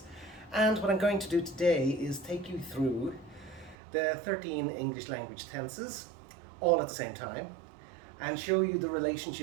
and what I'm going to do today is take you through the 13 English language tenses all at the same time and show you the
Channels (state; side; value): drops out; left; at 3.8 s